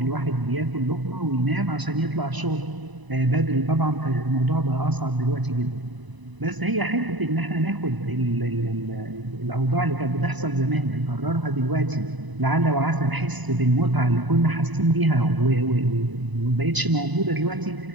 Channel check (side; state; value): left; late; 1.0 ms